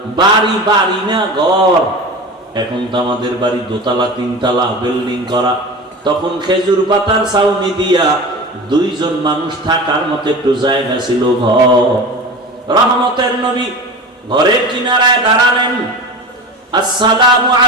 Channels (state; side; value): normal; both; correlation 0.32